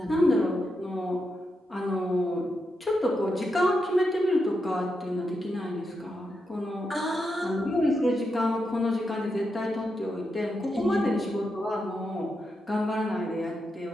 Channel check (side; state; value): both; normal; correlation 0.85